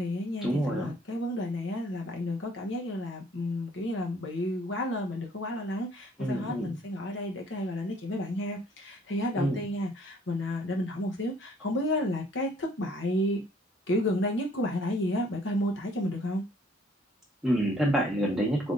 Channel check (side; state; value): both; normal; correlation 0.60